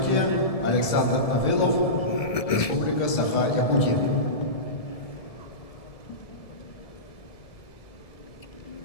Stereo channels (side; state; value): right; late; 1.7 ms